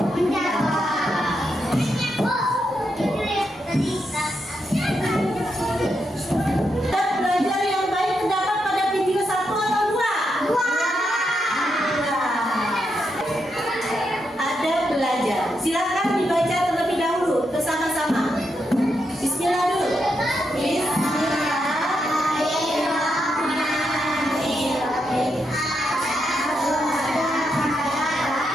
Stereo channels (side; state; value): both; normal; correlation 0.82